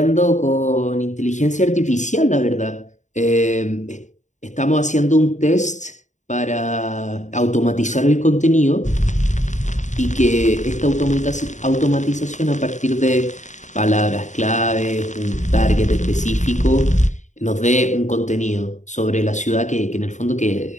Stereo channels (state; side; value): late; right; 0.35 ms